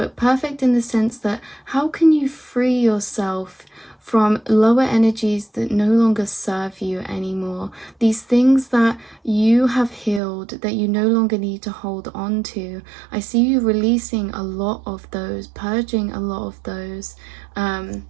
perfect in the sense that how can you free yourself from lower energies that no longer serve you anymore, these things that you have healed that you no longer need to hold on to. I see you releasing a lot of those, purging a lot of those.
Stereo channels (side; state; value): left; drops out; at 10.2 s